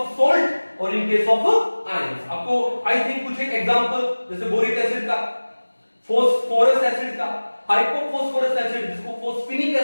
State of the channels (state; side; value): inverted; both; correlation -1.00